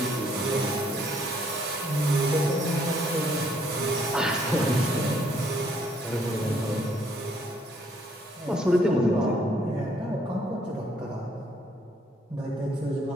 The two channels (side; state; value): both; normal; correlation 0.66